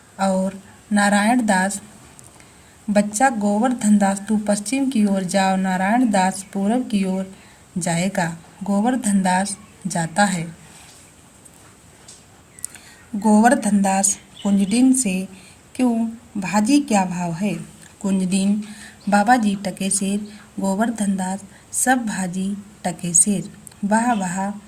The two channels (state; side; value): identical; both; correlation 1.00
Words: और नारायण दास, बच्चा गोवर्धन दास, तू पश्चिम की ओर जा और नारायण दास पूरब की ओर जाएगा। गोवर्धन दास जाता है। गोवर्धन दास कुंजडिन से, क्यों भाजी क्या भाव है? कुंजडिन, बाबा जी टके सेर। गोवर्धन दास, सब भाजी टके सेर। वाह वाह,